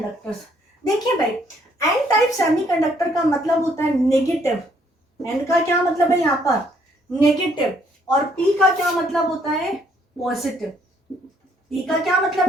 देखिए भाई, एन टाइप सेमीकंडक्टर का मतलब होता है नेगेटिव, एन का क्या मतलब है यहाँ पर, नेगेटिव, और पी का क्या मतलब होता है, पॉजिटिव। पी का क्या मतलब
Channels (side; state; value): both; normal; correlation 0.67